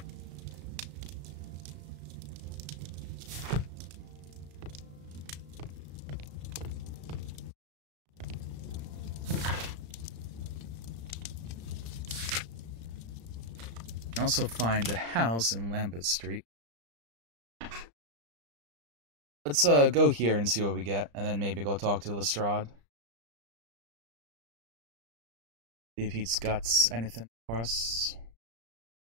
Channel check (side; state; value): left; late; 35 ms